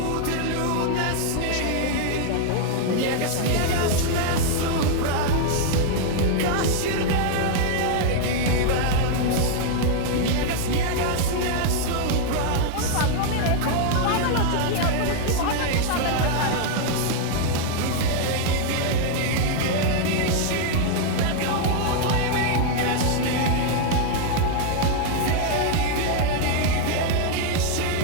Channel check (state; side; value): different; both; correlation 0.00